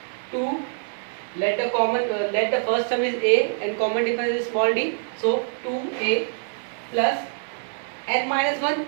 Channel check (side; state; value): left; silent; digital silence